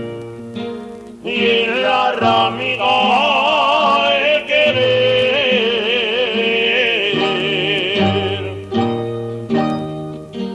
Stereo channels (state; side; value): identical; both; correlation 1.00